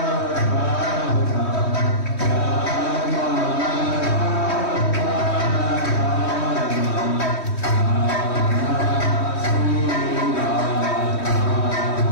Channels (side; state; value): right; late; 3.1 ms